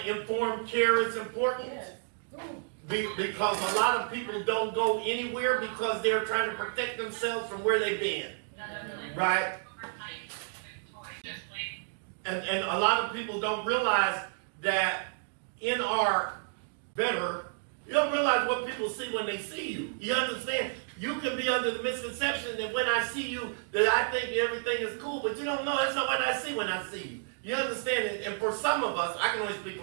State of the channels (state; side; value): silent; left; digital silence